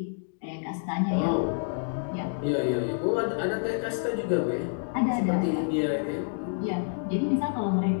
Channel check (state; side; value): silent; right; digital silence